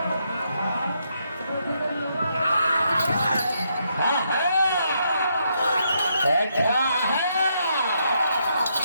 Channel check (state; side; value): inverted; both; correlation -0.77